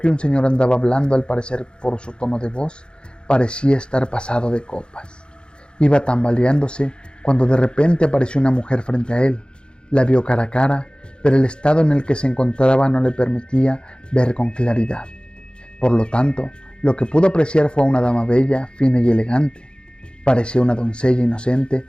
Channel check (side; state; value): right; late; 0.052 ms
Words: un señor andaba hablando, al parecer por su tono de voz, parecía estar pasado de copas. Iba tambaleándose cuando de repente apareció una mujer frente a él. La vio cara a cara, pero el estado en el que se encontraba no le permitía ver con claridad. Por lo tanto, lo que pudo apreciar fue a una dama bella, fina y elegante. Parecía una doncella inocente,